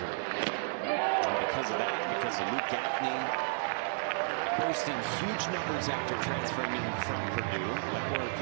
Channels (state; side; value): silent; left; 56 dB below the other